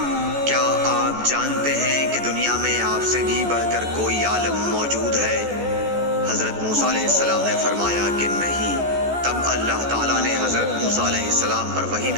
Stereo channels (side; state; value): left; late; 14 ms